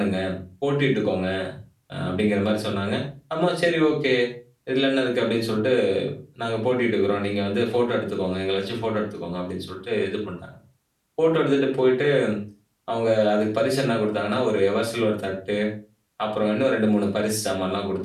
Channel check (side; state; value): both; identical; correlation 1.00